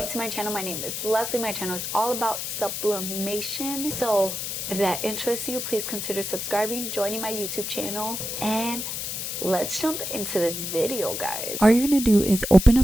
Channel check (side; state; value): left; noise; hiss, 4 dB below the sound